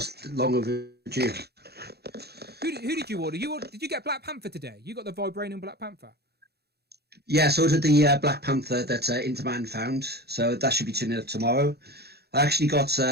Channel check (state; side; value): late; left; 0.47 ms